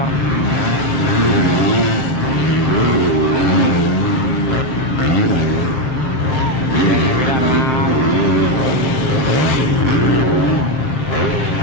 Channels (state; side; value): late; right; 7.8 ms